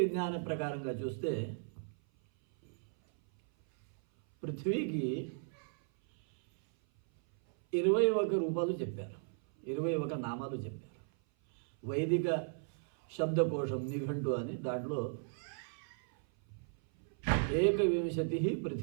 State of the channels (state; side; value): silent; left; 54 dB below the other